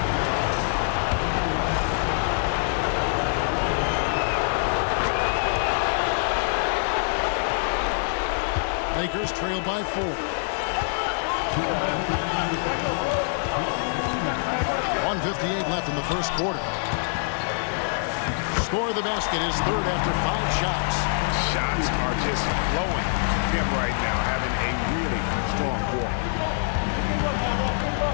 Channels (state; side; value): silent; right; digital silence